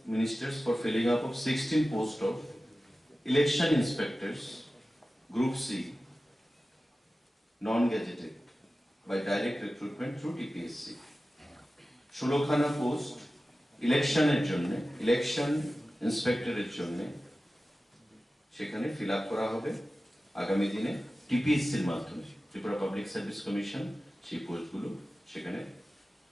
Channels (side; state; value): both; normal; correlation 0.95